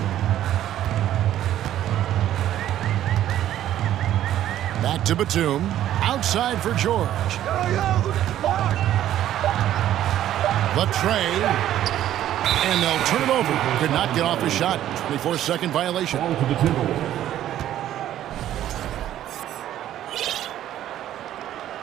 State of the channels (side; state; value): left; quieter; 12.2 dB